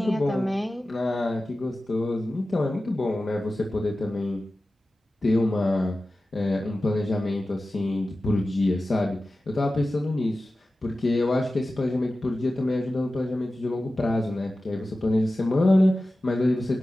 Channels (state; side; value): normal; both; correlation 0.95